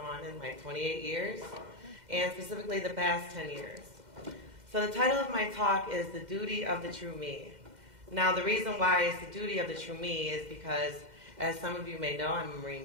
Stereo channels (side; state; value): left; late; 2.1 ms